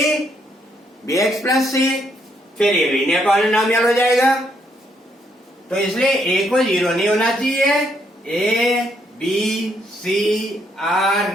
bx plus c। फिर ये लीनियर पॉलिनोमियल हो जाएगा। तो इसलिए a को 0 नहीं होना चाहिए। a b c are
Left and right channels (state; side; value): normal; both; correlation 0.73